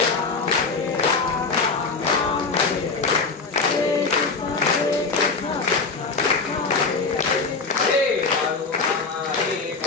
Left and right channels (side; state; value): right; quieter; 4.3 dB